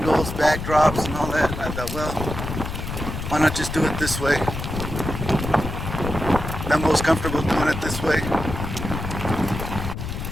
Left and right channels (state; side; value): noise; left; rumble, 6 dB below the sound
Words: backdrops, and all that. And I thought, well, why not just do it this way? I'm most comfortable doing it this way.